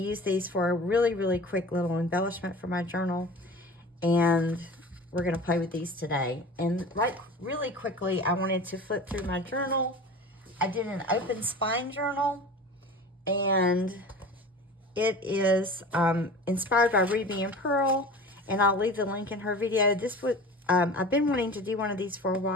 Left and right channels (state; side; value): normal; both; correlation 0.37